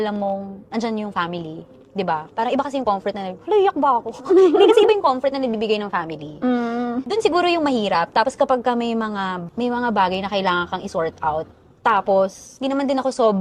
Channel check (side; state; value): both; identical; correlation 1.00